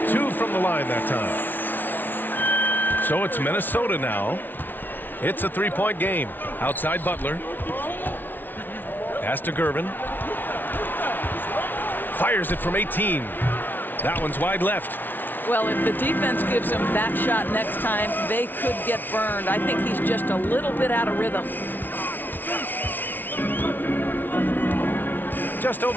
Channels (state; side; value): late; right; 0.090 ms